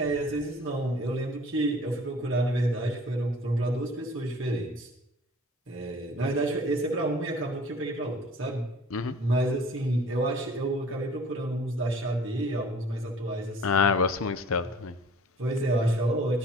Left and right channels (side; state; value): both; normal; correlation 0.50